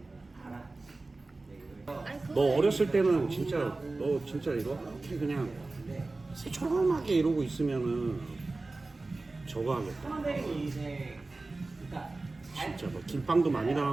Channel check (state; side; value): quieter; left; 3.3 dB